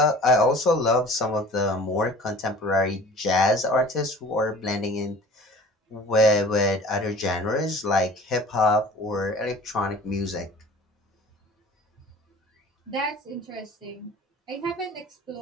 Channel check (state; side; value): normal; both; correlation 0.45